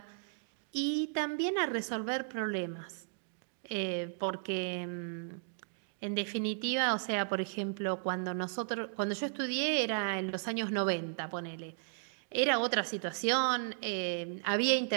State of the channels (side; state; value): left; silent; digital silence